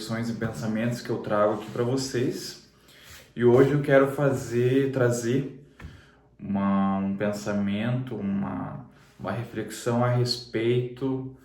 e pensamentos que eu trago aqui para vocês. E hoje eu quero trazer um pensamento, uma reflexão a respeito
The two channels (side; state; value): both; identical; correlation 1.00